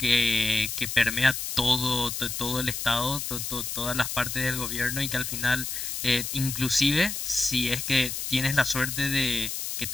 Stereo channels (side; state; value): left; noise; hiss, 4 dB below the sound